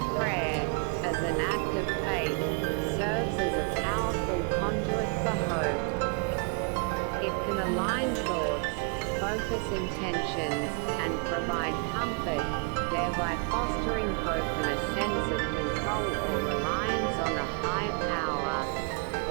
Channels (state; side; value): quieter; left; 34.1 dB